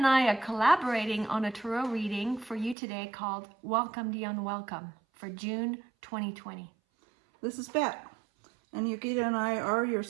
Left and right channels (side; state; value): left; drops out; at 2.8 s